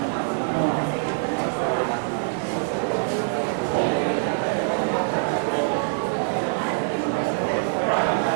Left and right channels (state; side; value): silent; left; digital silence